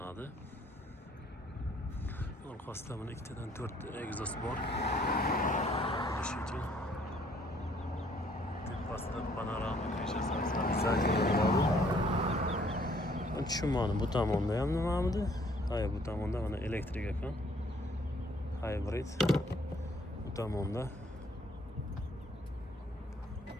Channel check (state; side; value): normal; both; correlation 0.62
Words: Orqasida mana ikkitadan 4 egzoz bor. Eshitchi. Tepasida panorama krishasi bor. Tushunmadim, bu tomonda ham nimamidi? Hayır, bu tomonda mana elektrik ekan. Hybrid. Bu tomonda